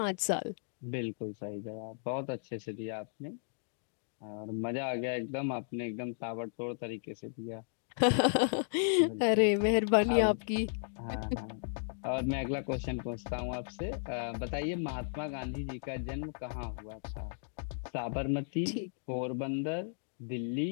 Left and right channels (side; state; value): right; silent; digital silence